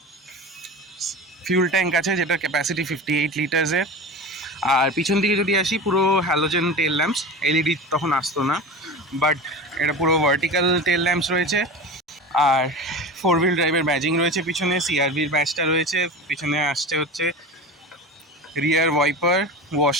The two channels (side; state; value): both; normal; correlation 0.30